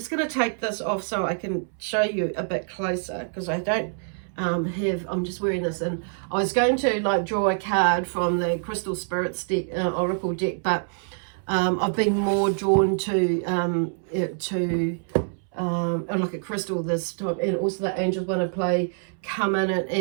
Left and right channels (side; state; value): left; silent; 61 dB below the other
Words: going to take this off so I can show you a bit closer, because I don't I'm just wearing this, and I was going to like draw a card from the Crystal Spirits deck, Oracle deck, but I've been more drawn to like a crystal this time, and also the angels want to come in